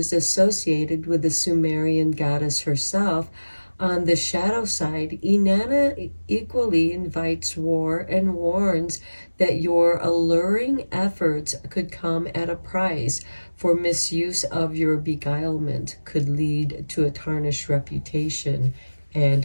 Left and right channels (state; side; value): inverted; both; correlation -1.00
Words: associated with the Sumerian goddess herself, on the shadow side, Inanna equally invites war and warns that your alluring efforts could come at a price, for misuse of your beguilement could lead to a tarnished reputation